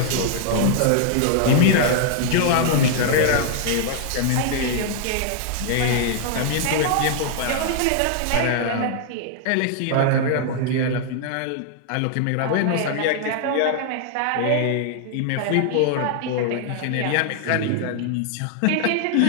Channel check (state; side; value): different; both; correlation 0.00